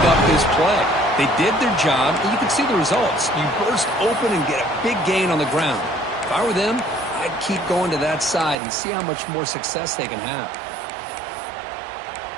up this play. They did their job, and you can see the results. You burst open and get a big gain on the ground. If I were them, I'd keep going to that side and see how much more success they can have.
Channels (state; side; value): drops out; left; at 8.6 s